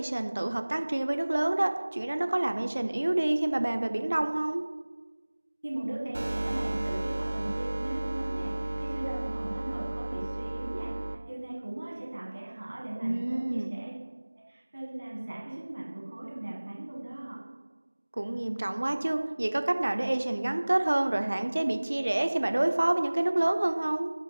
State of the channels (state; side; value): inverted; both; correlation -1.00